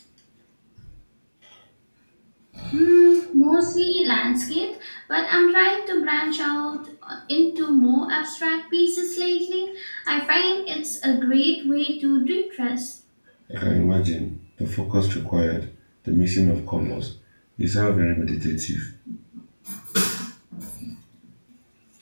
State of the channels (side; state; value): both; inverted; correlation -1.00